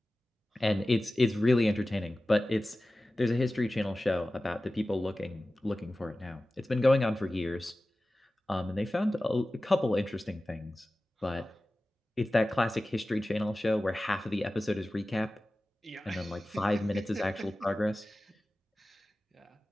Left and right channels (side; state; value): both; normal; correlation 0.96